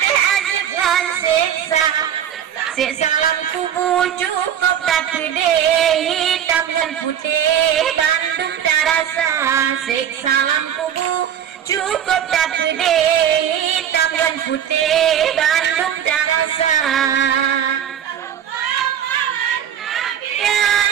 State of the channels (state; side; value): quieter; left; 9.5 dB